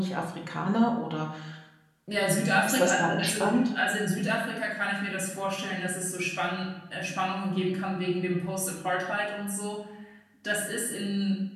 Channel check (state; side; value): identical; both; correlation 1.00